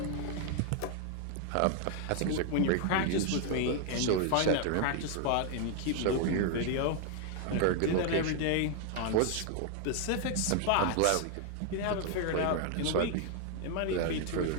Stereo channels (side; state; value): both; different; correlation 0.00